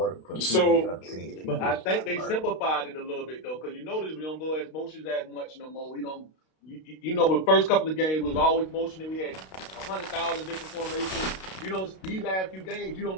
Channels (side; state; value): right; late; 32 ms